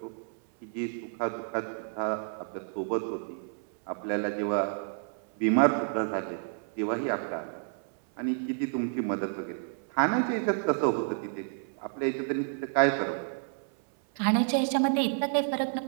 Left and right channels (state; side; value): silent; left; 58 dB below the other